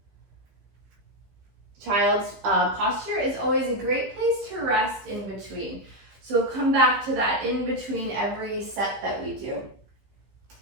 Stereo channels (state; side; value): late; left; 15 ms